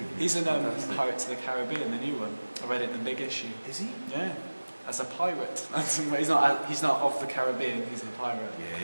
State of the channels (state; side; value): inverted; both; correlation -1.00